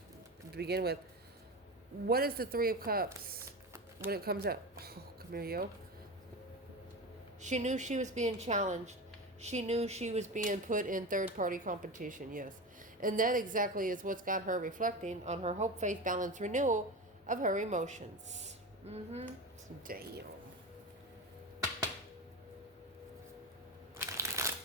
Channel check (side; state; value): both; normal; correlation 0.24